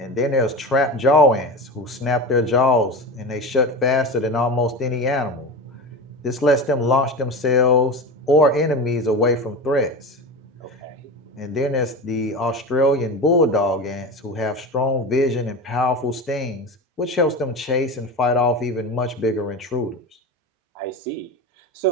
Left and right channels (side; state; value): both; normal; correlation 0.26